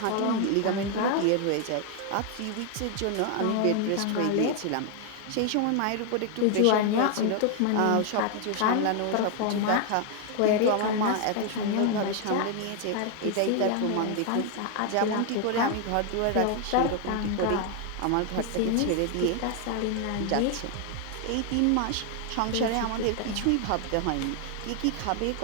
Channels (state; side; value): different; both; correlation 0.00